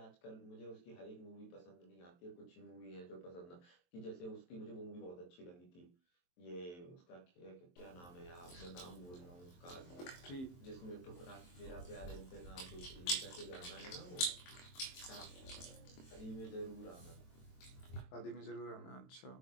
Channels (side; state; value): right; late; 23 ms